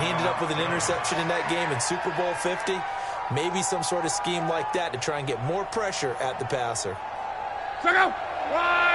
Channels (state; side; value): identical; both; correlation 1.00